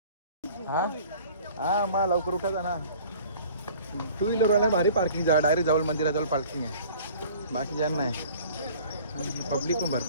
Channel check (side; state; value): both; inverted; correlation -0.49